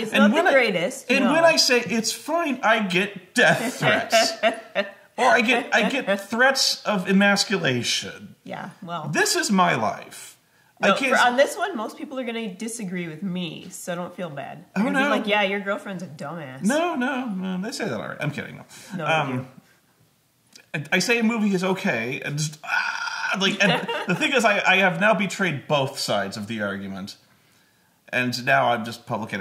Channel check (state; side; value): identical; both; correlation 1.00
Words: not the greatest. And when I say it's fine, I get death threats. Or I get threats of emasculation. Yeah, well. This is my life. No, on this one, most people are going to disagree with me, so don't feel bad. They're gonna be like, yeah, your girlfriend's a dumbass. No, they say that already. I'm kidding. No, I say a movie is okay, and just, and the thing is, I have now betrayed both sides of the argument. And now I'm just public